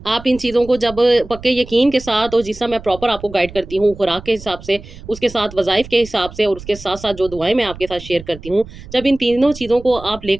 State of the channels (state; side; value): noise; right; rumble, 16 dB below the sound